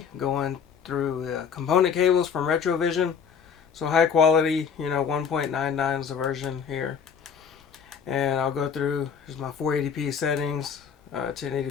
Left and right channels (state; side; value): quieter; right; 6.9 dB